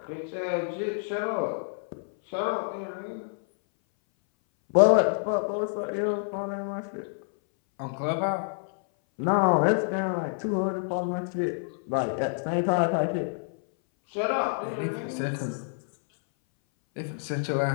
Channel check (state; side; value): silent; right; 58 dB below the other